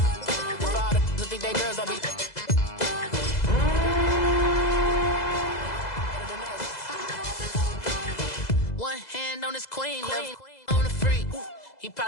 One hand on his queen, left on the freak. He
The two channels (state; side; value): late; right; 2.0 ms